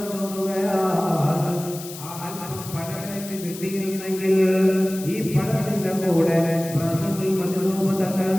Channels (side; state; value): left; noise; hiss, 13 dB below the sound